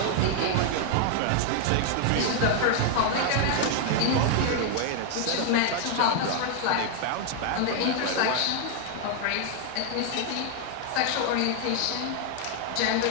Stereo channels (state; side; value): different; both; correlation 0.00